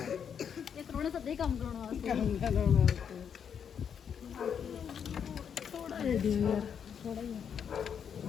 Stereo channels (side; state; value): right; quieter; 7.7 dB